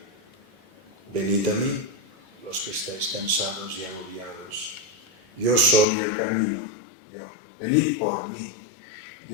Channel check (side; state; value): right; drops out; at 5.9 s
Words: Venid a mí, los que estáis cansados y agobiados. Yo soy el camino. venid por mí.